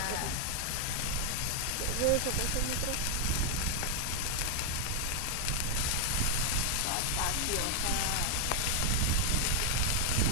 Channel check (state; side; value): different; both; correlation 0.00